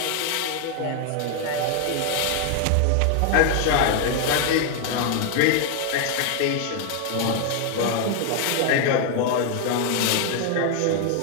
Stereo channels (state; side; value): different; both; correlation 0.00